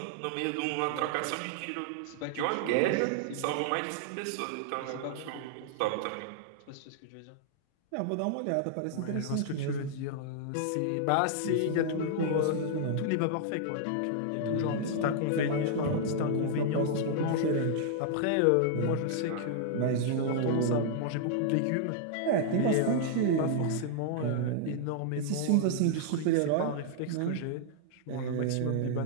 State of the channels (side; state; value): both; different; correlation -0.01